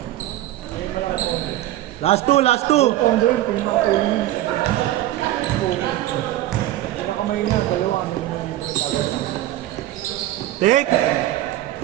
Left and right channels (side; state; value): left; quieter; 14.8 dB